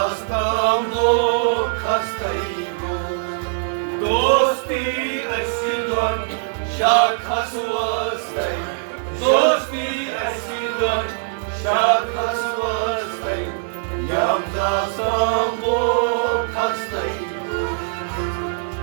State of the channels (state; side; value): silent; left; 60 dB below the other